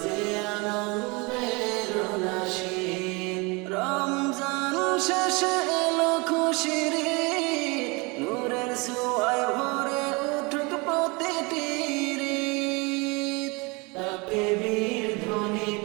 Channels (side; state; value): left; quieter; 27.6 dB